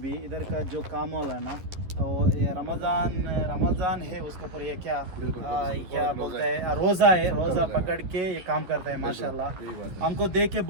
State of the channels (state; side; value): late; left; 11 ms